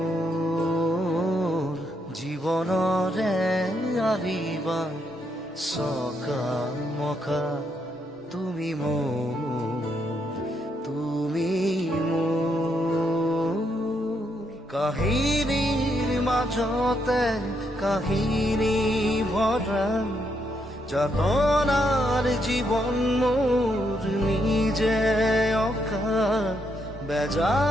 জীৱনৰে আহিবাৰ সকাল মকা, তুমি মোৰ কাহিনীৰ মাজতে কাহিনী ভরা, যাতনার জীবন মোর নিজে অকা,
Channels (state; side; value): normal; both; correlation 0.77